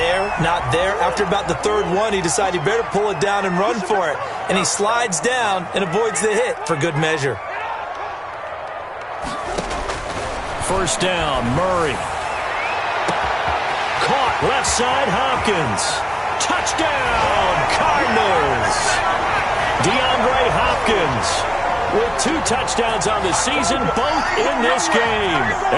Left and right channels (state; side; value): identical; both; correlation 1.00